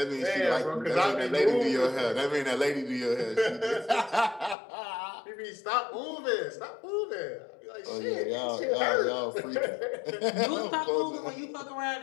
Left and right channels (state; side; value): drops out; right; at 4.5 s